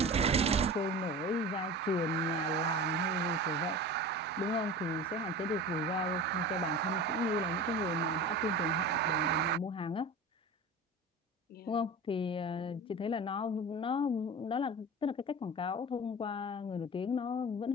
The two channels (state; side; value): normal; both; correlation 0.33